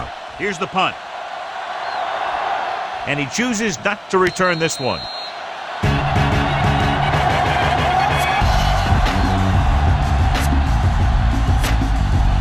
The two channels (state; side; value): identical; both; correlation 1.00